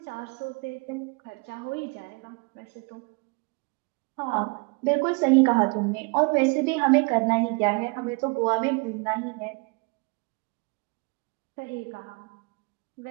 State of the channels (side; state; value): left; quieter; 31.2 dB